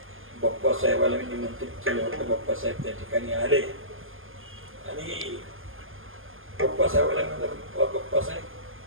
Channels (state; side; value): late; left; 0.59 ms